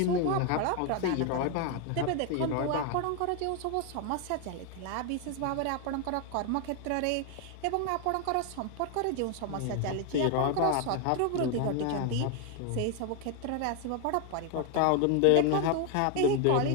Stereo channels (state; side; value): different; both; correlation 0.01